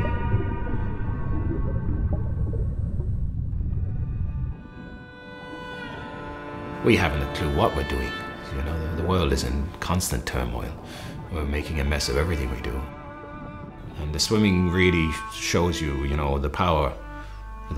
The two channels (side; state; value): both; identical; correlation 1.00